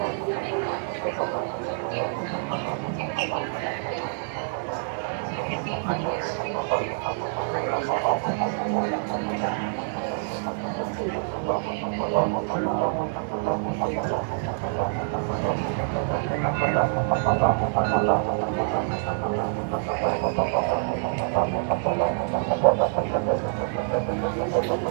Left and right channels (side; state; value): left; silent; 61 dB below the other